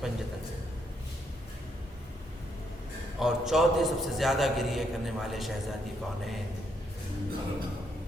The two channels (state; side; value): normal; both; correlation 0.75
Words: پنجتن سے. اور چوتھے سب سے زیادہ گریہ کرنے والے شہزادی کونین.